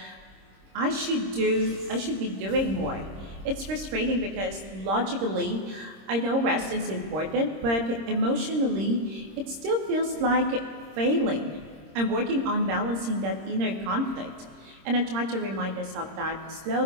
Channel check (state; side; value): late; left; 26 ms